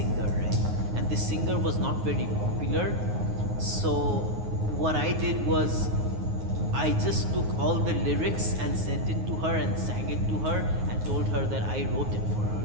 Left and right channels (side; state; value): left; late; 9.5 ms